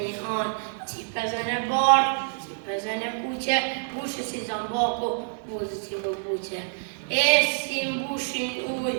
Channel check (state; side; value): silent; left; digital silence